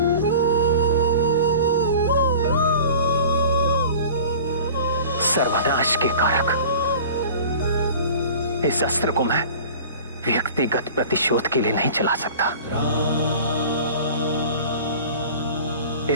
सर्वनाश के कारक इस अस्त्र को मैं व्यक्तिगत प्रतिशोध के लिए नहीं चला सकता।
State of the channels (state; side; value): inverted; both; correlation -0.42